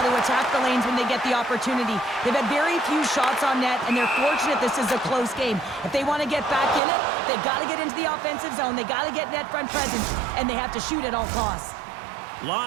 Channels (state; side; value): drops out; left; at 6.8 s